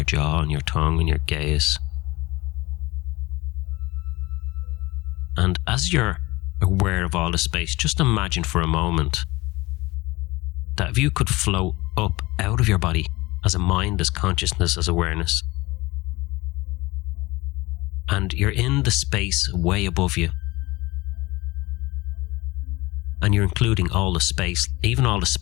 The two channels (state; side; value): quieter; right; 21.3 dB